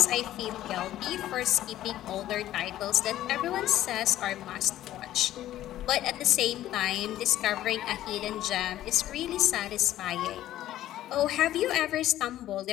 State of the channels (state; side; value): quieter; right; 13.4 dB